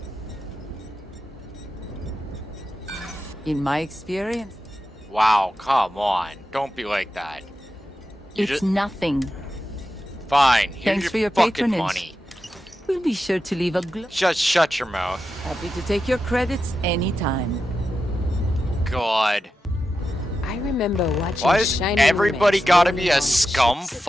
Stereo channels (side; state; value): both; normal; correlation 0.90